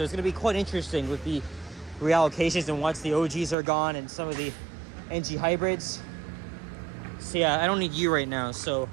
it's going to be quite interesting with the reallocations and once the OGs are gone and some of the NG hybrids. So yeah, I don't need you right now. So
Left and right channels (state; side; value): drops out; left; at 3.6 s